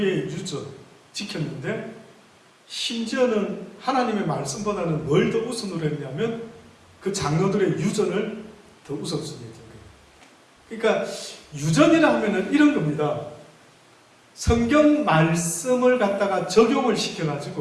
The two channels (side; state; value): both; identical; correlation 1.00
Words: 유전 지켰는데, 심지어는 하나님의 말씀보다는 뭘 더 우선으로 했냐면 그 장로들의 유전을 더 우선순위에 둔 거예요. 그러니까 유전이라 하면은 이런 겁니다. 성경 말씀을 갖다가 적용을